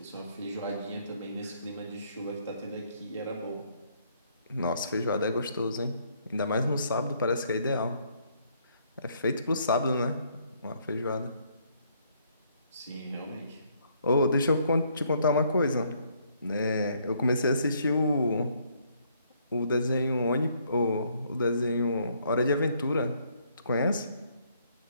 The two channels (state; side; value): inverted; both; correlation -0.68